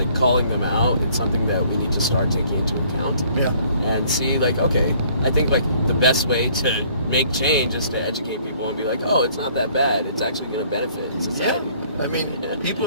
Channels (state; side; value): inverted; both; correlation -0.59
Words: calling them out, it's something that we need to start taking into account. Yeah. And see, like, okay, I think like the best way to make change is to educate people and be like, oh, it's not that bad, it's actually going to benefit society. Yeah. I mean,